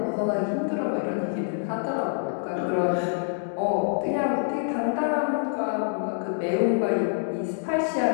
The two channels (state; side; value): silent; right; digital silence